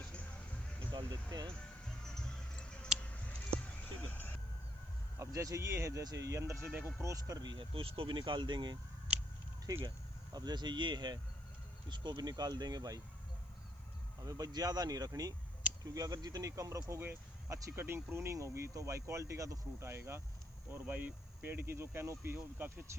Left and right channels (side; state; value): right; noise; hiss, 28 dB below the sound